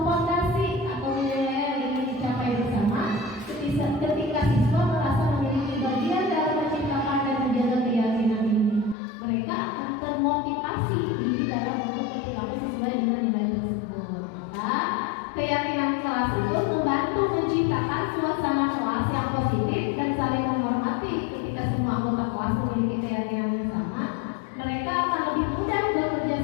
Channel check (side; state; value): right; drops out; at 9.0 s